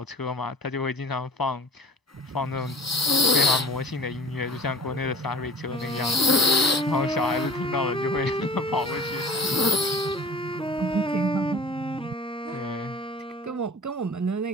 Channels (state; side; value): normal; both; correlation 0.42